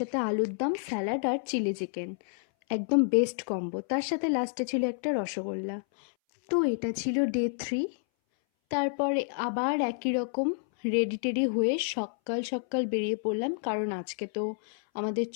আলুর দম, স্যালাড আর চিলি চিকেন, একদম বেস্ট কম্বো। তার সাথে লাস্টে ছিল একটা রসগোল্লা। তো এটা ছিল ডে 3। তারপরে আবার একই রকম রেডি টেডি হয়ে সকাল সকাল বেরিয়ে পড়লাম, কারণ আজকে তো আমাদের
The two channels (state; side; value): silent; right; 58 dB below the other